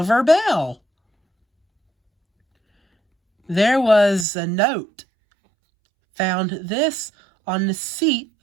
bell. There was a note. "Found this on the seat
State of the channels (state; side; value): drops out; left; at 4.2 s